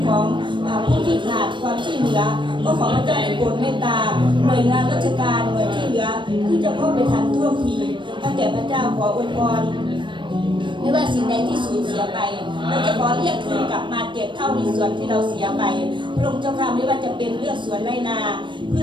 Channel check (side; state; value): left; late; 0.23 ms